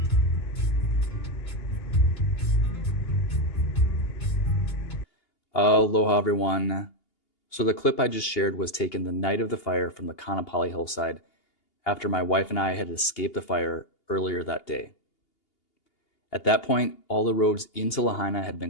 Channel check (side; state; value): right; late; 2.8 ms